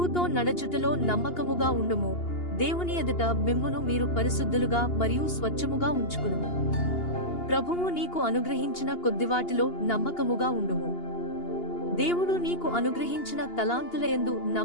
నడచుటలో నమ్మకముగా ఉండుము. దేవుని ఎదుట మిమ్మును మీరు పరిశుద్ధులుగా మరియు స్వచ్ఛముగా ఉంచుకునుము. ప్రభువు నీకు అనుగ్రహించిన కొద్దివాటిలో నమ్మకముగా ఉండుము. దేవుడు నీకు అనుగ్రహించిన తలాంతులయందు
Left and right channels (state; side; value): late; right; 2.8 ms